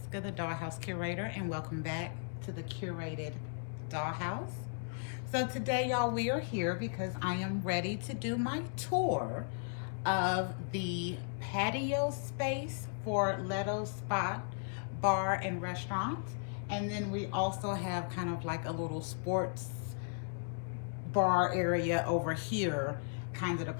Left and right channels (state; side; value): silent; right; digital silence